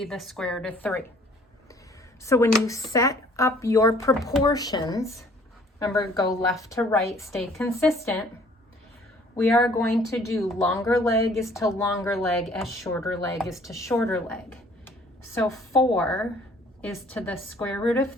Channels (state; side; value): normal; both; correlation 0.57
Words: the square root of 3. So when you set up your proportions, remember, go left to right, stay consistent, we are going to do longer leg is to longer leg as shorter leg is to shorter leg. So 4 is to the square root of